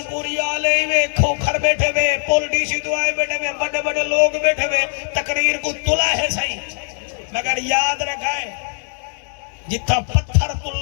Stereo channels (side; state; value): right; silent; 56 dB below the other